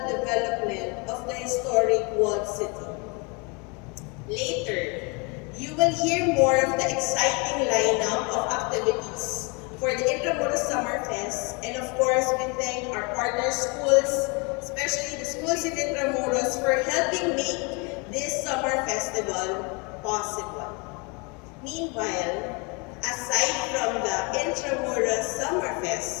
development of the historic walled city. Later, you will hear more of the exciting lineup of activities for the Intramuros Summer Fest, and of course, we thank our partner schools, especially the schools in Intramuros, for helping make this summer festival possible. Meanwhile, aside from the Intramuros Summer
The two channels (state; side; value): quieter; right; 31.1 dB